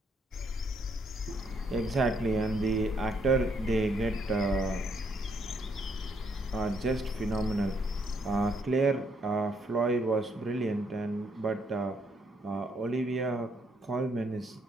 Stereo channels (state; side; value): normal; both; correlation 0.72